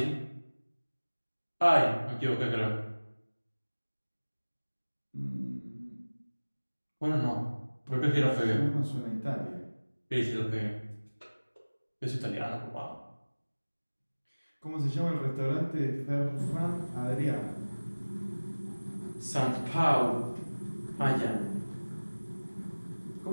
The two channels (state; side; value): inverted; both; correlation -1.00